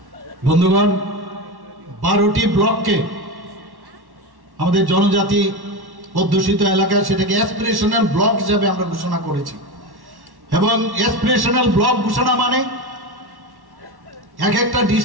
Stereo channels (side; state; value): left; late; 1.1 ms